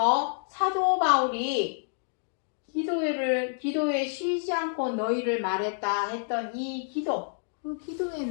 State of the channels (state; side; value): silent; right; digital silence